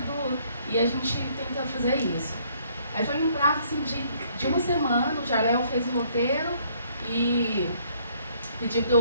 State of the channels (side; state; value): both; inverted; correlation -0.65